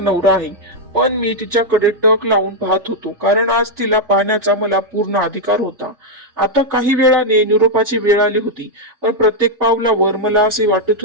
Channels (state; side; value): late; left; 3.3 ms